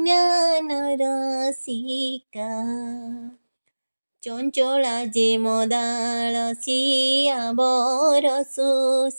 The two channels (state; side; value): inverted; both; correlation -1.00